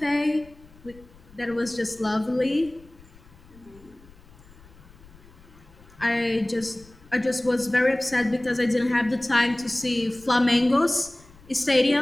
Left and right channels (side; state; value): left; noise; rumble, 24 dB below the sound